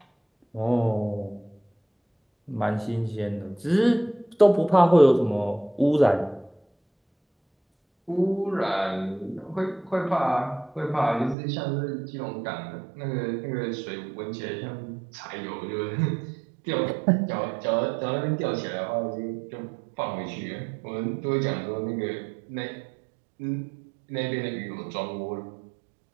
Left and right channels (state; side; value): drops out; left; at 11.4 s